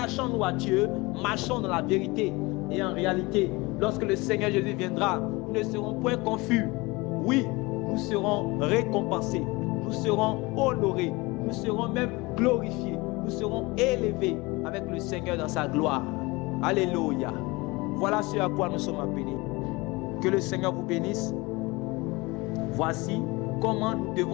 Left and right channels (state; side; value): quieter; right; 23.7 dB